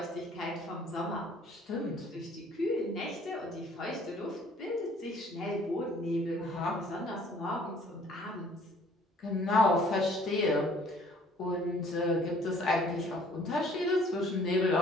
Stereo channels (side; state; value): both; normal; correlation 0.57